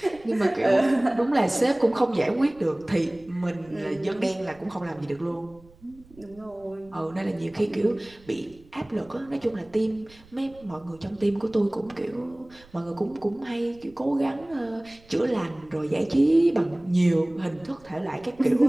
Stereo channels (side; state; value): right; noise; rumble, 26 dB below the sound